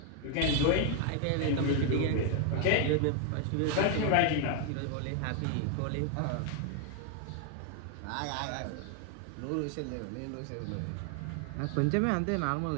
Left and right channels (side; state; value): both; different; correlation 0.00